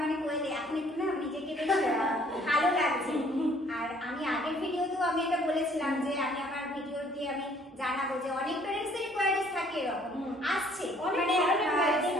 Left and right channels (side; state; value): both; normal; correlation 0.60